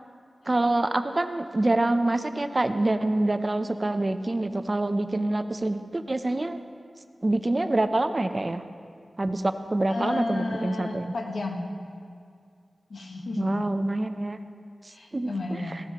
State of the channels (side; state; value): both; normal; correlation 0.98